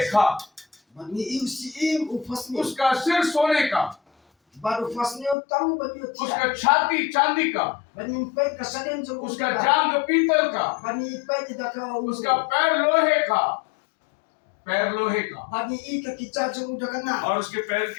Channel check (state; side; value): drops out; right; at 5.4 s